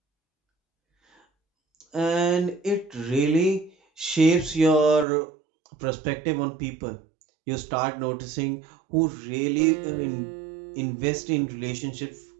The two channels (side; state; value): left; drops out; at 5.1 s